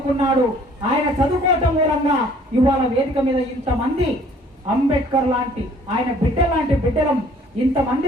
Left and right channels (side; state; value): both; normal; correlation 0.57